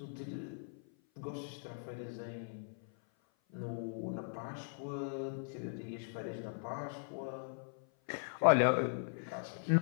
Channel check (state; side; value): silent; right; 52 dB below the other